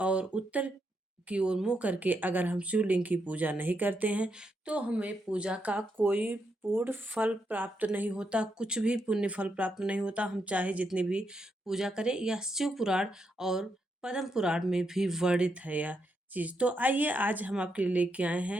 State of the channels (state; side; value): normal; both; correlation 0.81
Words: और उत्तर की ओर मुँह करके अगर हम शिवलिंग की पूजा नहीं करते हैं, तो हमें पूजा का कोई पूर्ण फल प्राप्त नहीं होता, कुछ भी पुण्य फल प्राप्त नहीं होता। हम चाहे जितनी भी पूजा करें, यह शिव पुराण और पद्म पुराण में भी वर्णित है यह चीज़। तो आइए आज हम आपके लिए लेके आए